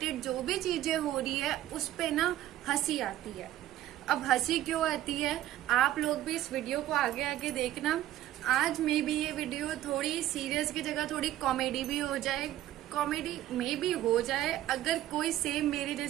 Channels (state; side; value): quieter; left; 13.7 dB